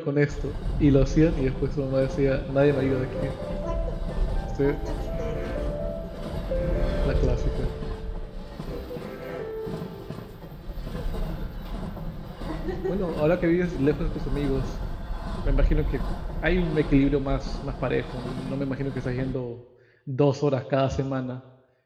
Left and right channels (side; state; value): both; identical; correlation 1.00